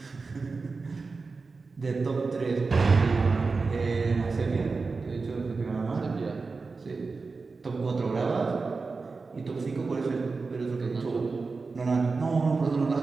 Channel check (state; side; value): quieter; left; 4.2 dB